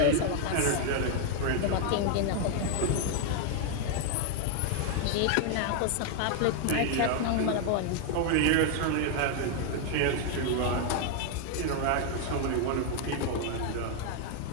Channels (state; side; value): different; both; correlation 0.00